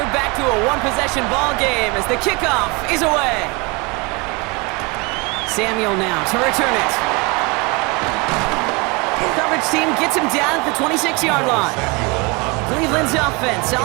back to a one-possession ball game as the kickoff is away. Samuel now to return it. Coverage team gets him down at the 26-yard line. Cleveland's offense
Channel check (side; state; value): left; quieter; 28.1 dB